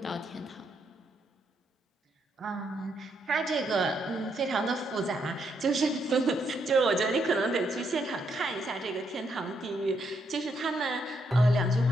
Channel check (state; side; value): normal; both; correlation 0.77